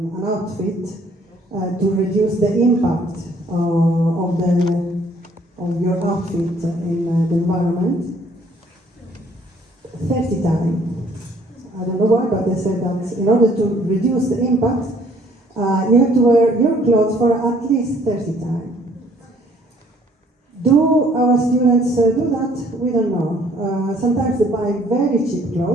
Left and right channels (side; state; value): both; normal; correlation 0.61